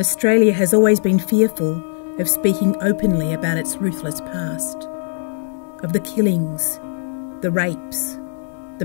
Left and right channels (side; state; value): right; silent; digital silence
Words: has always been fearful of speaking openly about its ruthless past, of the killings, the rapes, the